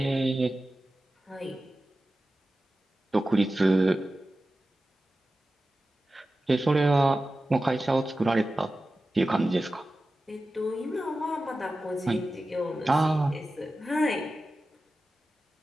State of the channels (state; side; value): normal; both; correlation 0.94